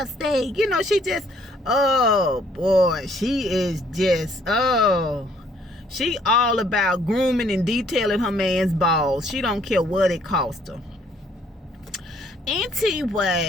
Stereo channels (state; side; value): normal; both; correlation 0.64